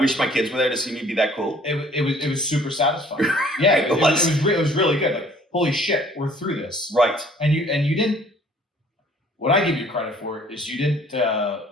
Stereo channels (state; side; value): normal; both; correlation 0.55